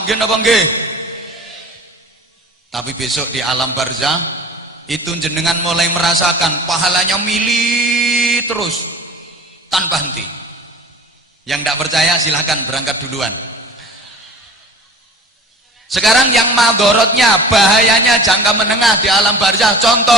nggih napa nggih? Tapi besok di alam barzah itu jenengan mulai merasakan pahalanya mili terus tanpa henti. Yang tidak percaya silahkan berangkat duluan. Sekarang yang madorotnya, bahayanya jangka menengah di alam barzah.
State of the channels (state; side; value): normal; both; correlation 0.41